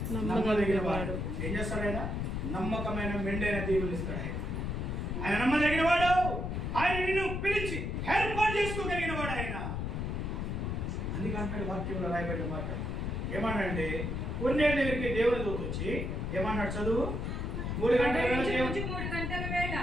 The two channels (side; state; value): left; noise; rumble, 2 dB below the sound